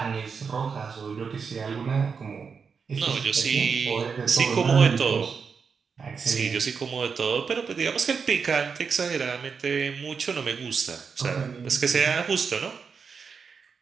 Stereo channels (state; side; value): quieter; left; 5.7 dB